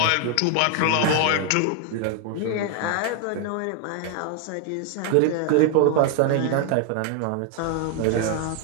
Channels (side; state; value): both; different; correlation 0.00